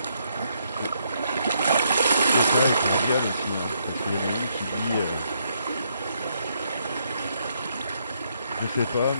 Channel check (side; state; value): both; inverted; correlation -0.75